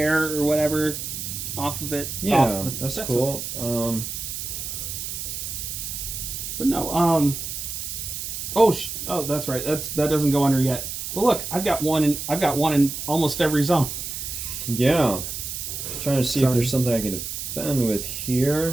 or whatever off of it. Yeah, that's cool. But no, oh, that's right. That doesn't go under yet. But look, I've got one in almost every zone. Yeah. I'm trying to see if there's something I can defend with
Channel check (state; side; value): noise; right; hiss, 6 dB below the sound